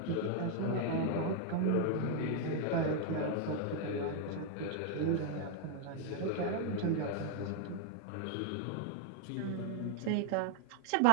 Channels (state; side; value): different; both; correlation 0.00